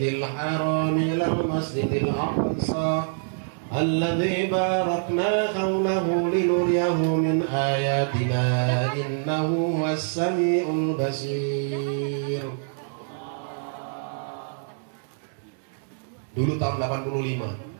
haram ilal masjidil aqsa alladzi barakna hawlahu linuriyahu min ayatina innahu huwas samiul basir. Dulu tahun 85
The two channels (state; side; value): silent; left; digital silence